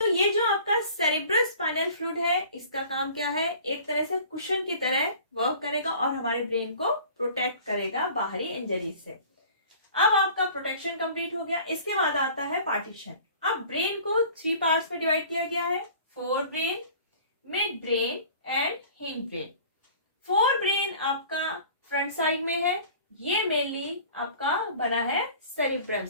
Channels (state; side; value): inverted; both; correlation -0.46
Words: ये जो आपका सेरिब्रोस्पाइनल फ्लूइड है, इसका काम क्या है? एक तरह से कुशन की तरह वर्क करेगा और हमारे ब्रेन को प्रोटेक्ट करेगा बाहरी इंजरी से। अब आपका प्रोटेक्शन कंप्लीट हो गया। इसके बाद आता है पार्टीशन। अब ब्रेन को 3 पार्ट्स में डिवाइड किया गया है, fore brain, mid brain and hind brain. Fore brain आपका फ्रंट साइड में है, ये मेनली आपका बना है सेरिब्रम